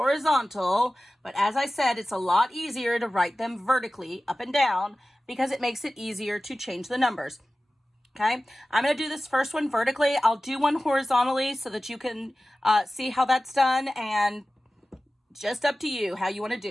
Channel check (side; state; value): both; normal; correlation 0.96